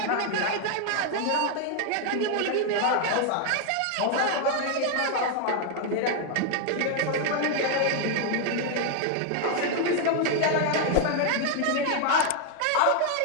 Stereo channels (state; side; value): different; both; correlation 0.00